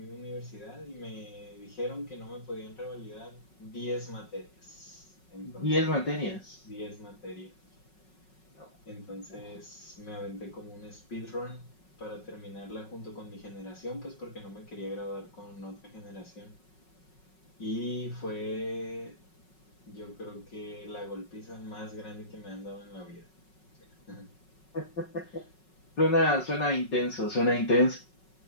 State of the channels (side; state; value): right; late; 5.4 ms